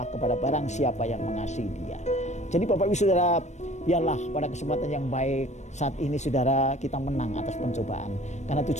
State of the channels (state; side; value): late; right; 0.34 ms